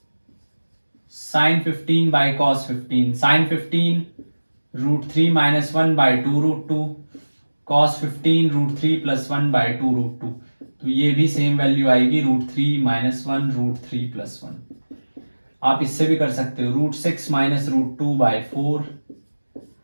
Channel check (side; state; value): both; inverted; correlation -1.00